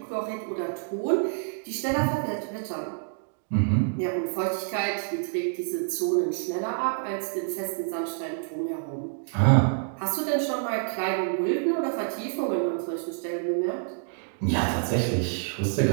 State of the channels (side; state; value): left; silent; digital silence